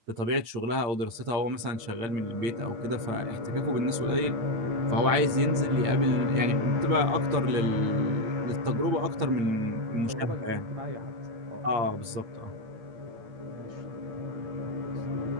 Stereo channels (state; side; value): late; left; 8.7 ms